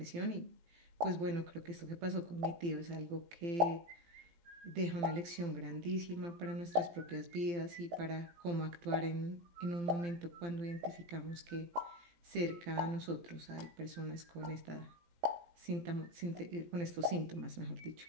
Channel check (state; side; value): late; left; 18 ms